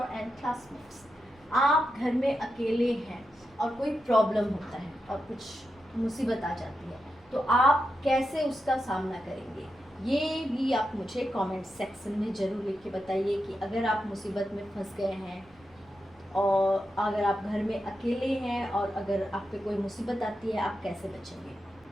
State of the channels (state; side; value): noise; right; rumble, 29 dB below the sound